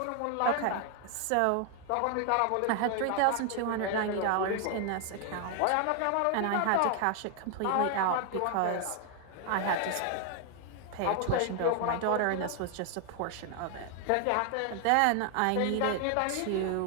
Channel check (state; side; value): different; both; correlation 0.00